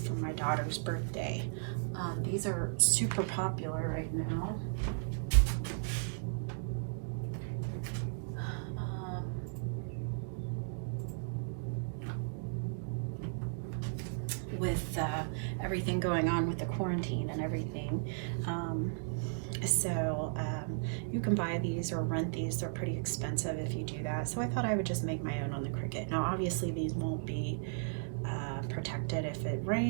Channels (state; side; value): silent; left; digital silence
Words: for my daughter's birthday. These are super popular right now. With everything going on with the quarantine and everything. You can buy these or rent these. They're pretty expensive if you do that. So I thought I would just make my own on the Cricut. Now obviously these won't be protected if it